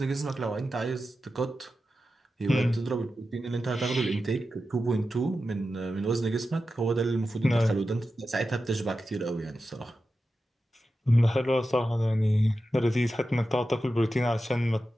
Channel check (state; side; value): normal; both; correlation 0.91